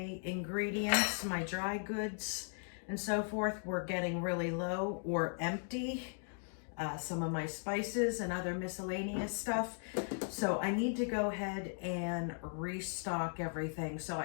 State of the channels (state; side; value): silent; right; 53 dB below the other